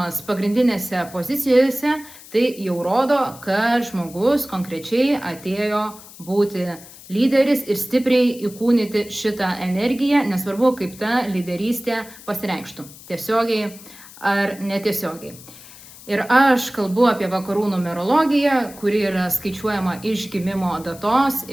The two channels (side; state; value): left; noise; hiss, 19 dB below the sound